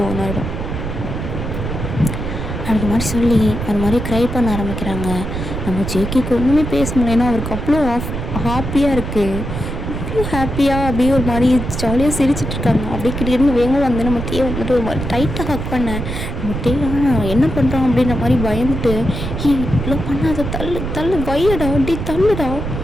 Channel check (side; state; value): right; noise; rumble, 5 dB below the sound